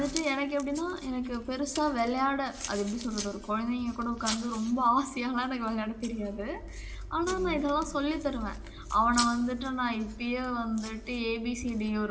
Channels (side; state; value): both; identical; correlation 1.00